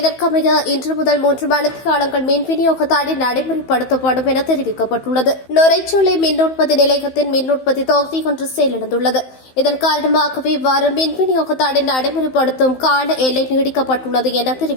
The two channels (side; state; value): right; late; 15 ms